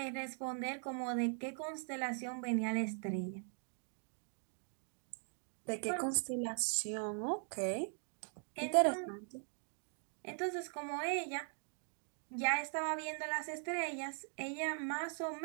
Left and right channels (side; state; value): left; silent; 50 dB below the other